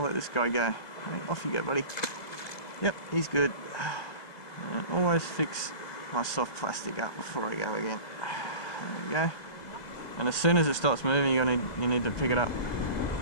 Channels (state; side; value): late; right; 1.7 ms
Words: let this guy go. Okay, off you go, buddy. Yep, he's good. And always fix my soft plastic up before I go again. There we go. And as soon as it starts moving, you need to pick it up.